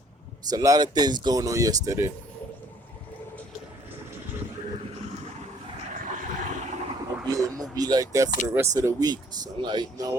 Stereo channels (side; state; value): both; normal; correlation 0.60